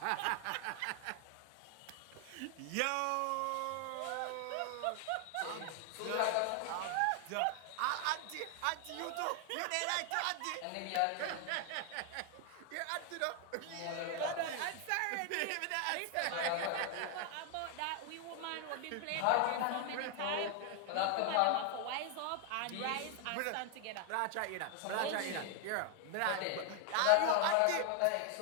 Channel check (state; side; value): different; both; correlation 0.00